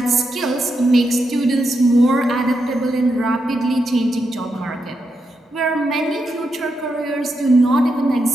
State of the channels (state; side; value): normal; both; correlation 0.84